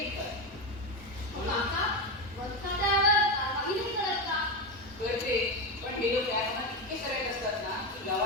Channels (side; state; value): both; normal; correlation 0.14